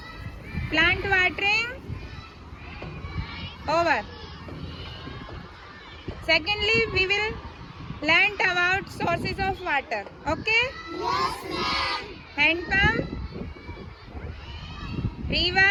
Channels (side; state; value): both; identical; correlation 1.00